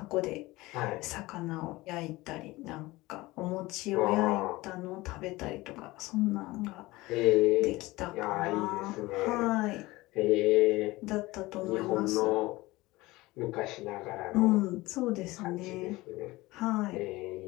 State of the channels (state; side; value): quieter; right; 20.1 dB